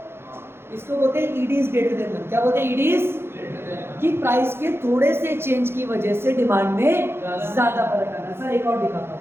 इसको बोलते हैं ED is greater than one. क्या बोलते हैं? ईडी इज, कि प्राइस के थोड़े से चेंज की वजह से डिमांड में ज्यादा फर्क आ रहा है। सर एक और दिखाता हूं,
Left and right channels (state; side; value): late; left; 0.11 ms